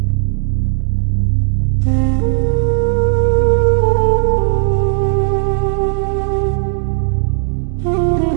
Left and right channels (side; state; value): left; silent; digital silence